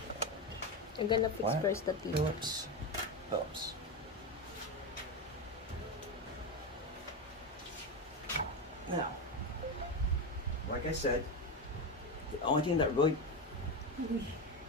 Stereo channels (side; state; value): both; normal; correlation 0.14